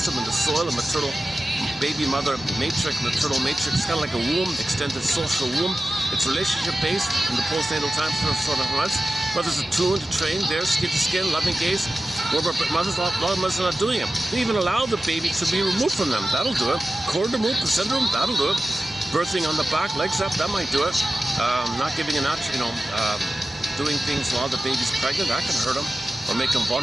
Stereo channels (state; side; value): normal; both; correlation 0.95